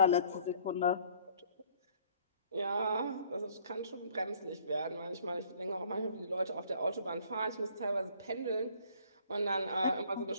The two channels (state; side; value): inverted; both; correlation -0.58